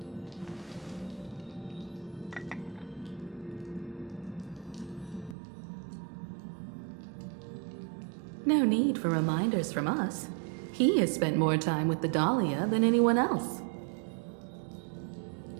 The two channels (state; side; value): drops out; left; at 5.4 s